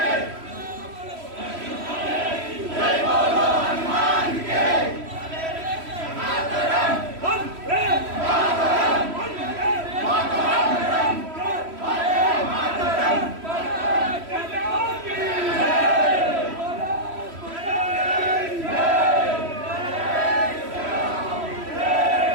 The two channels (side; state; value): left; late; 3.1 ms